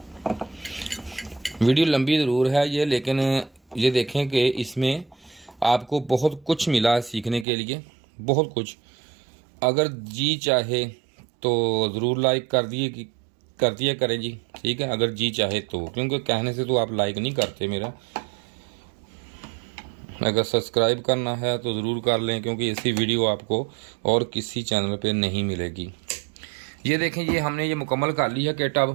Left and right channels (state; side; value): drops out; left; at 7.5 s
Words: वीडियो लंबी ज़रूर है ये, लेकिन ये देखें कि इसमें आपको बहुत कुछ मिला सीखने के लिए, बहुत कुछ। अगर जी चाहे तो ज़रूर लाइक कर दिया करें जी, ठीक है, अगर जी चाहे तो, क्योंकि कहने से तो आप लाइक नहीं करते मेरा। अगर सब्सक्राइब करना है तो ज़रूर कर लें, क्योंकि ऐसी वीडियो आपको और किसी चैनल पे नहीं मिलेगी। ये देखें, ये हमने ये मुकम्मल कर ली है किट